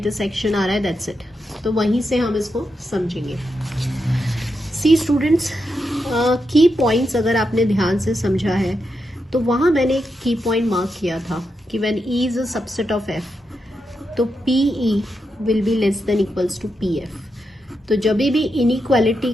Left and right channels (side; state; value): both; normal; correlation 0.85